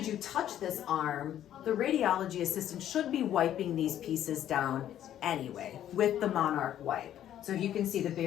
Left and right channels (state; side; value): quieter; right; 11.3 dB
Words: you touch this arm, the radiology assistant should be wiping these pieces down anyway with the Monarch wipe. So you can see the